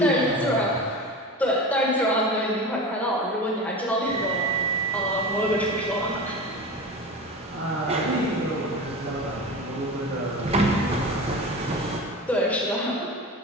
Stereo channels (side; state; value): both; normal; correlation 0.30